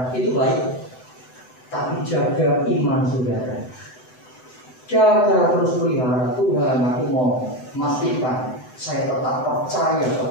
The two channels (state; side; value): late; right; 7.9 ms